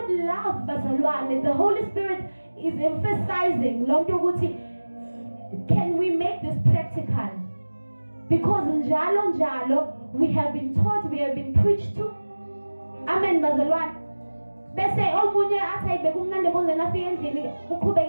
love bazalwane, the Holy Spirit is emphasizing lonto ukuthi can we make this practical? Because njalo we have been taught, we have been preached to. Amen bazalwane. Bese omunye athi ayibeke umnandi bonzeni afike endlini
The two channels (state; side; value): inverted; both; correlation -1.00